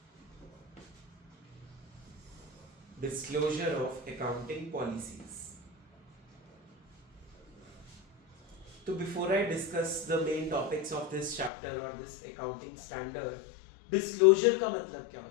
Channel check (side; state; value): right; drops out; at 11.5 s